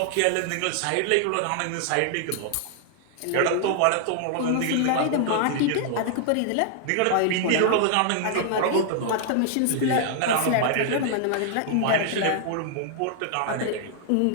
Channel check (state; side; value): different; both; correlation 0.00